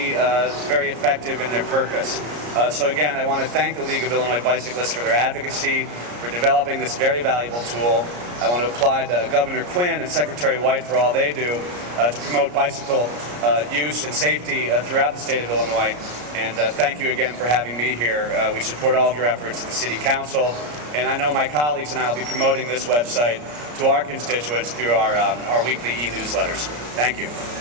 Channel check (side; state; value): left; late; 34 ms